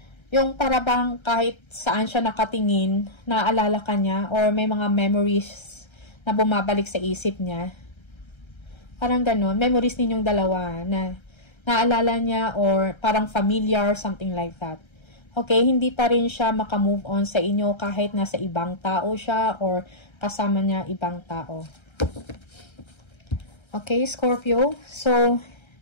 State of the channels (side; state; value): right; late; 1.3 ms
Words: Yung parabang kahit saan siya nakatingin, naaalala ka niya, or may mga memories na bumabalik sa isip niya. Parang ganun, memories ninyong dalawa na naalala niya or parang familiar, something like that. Okay, hindi pa rin siya makamove on sa inyo kahit nasa ibang tao siya or kasama niya ibang tao. Okay, Scorpio. So,